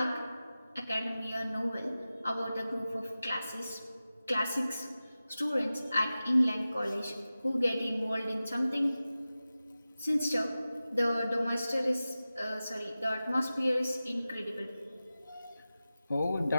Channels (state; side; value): inverted; both; correlation -0.95